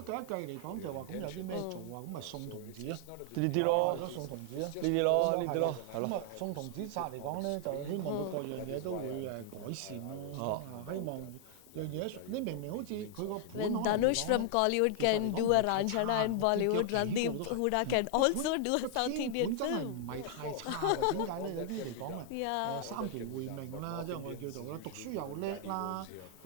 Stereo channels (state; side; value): different; both; correlation 0.00